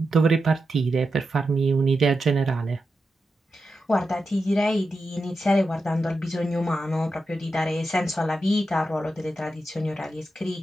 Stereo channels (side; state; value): both; normal; correlation 0.88